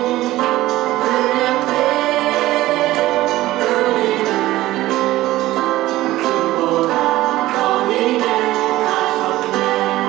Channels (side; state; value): left; quieter; 16.5 dB